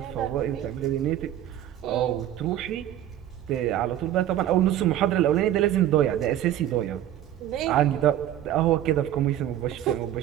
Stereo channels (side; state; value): left; quieter; 12.0 dB